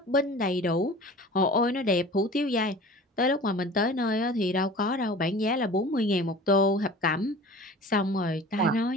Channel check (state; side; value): normal; both; correlation 0.41